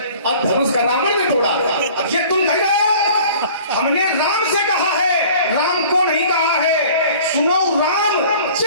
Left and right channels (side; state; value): both; inverted; correlation -0.48